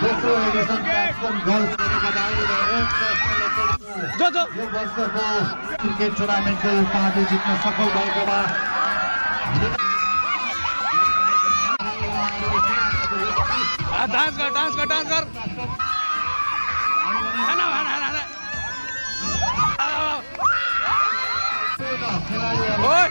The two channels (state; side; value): inverted; both; correlation -1.00